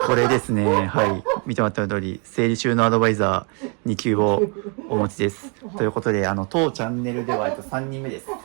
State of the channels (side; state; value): left; quieter; 35.9 dB